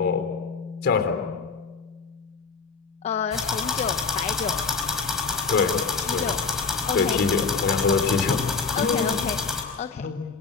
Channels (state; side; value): quieter; right; 4.8 dB